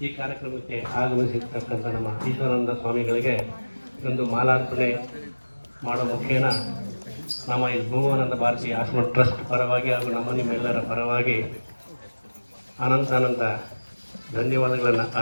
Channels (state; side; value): inverted; both; correlation -1.00